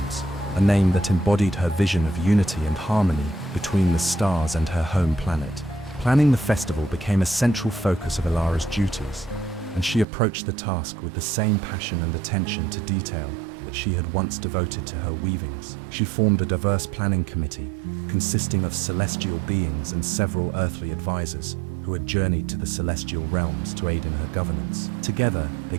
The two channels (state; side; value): drops out; left; at 10.1 s